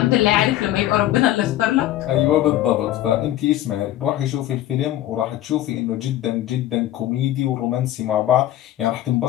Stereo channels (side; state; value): right; quieter; 13.7 dB